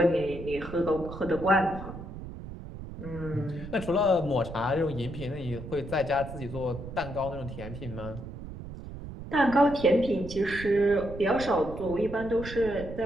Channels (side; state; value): right; noise; rumble, 11 dB below the sound